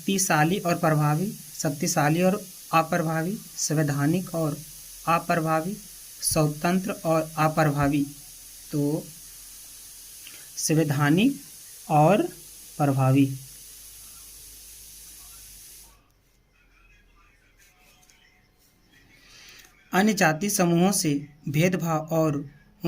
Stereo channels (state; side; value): identical; both; correlation 1.00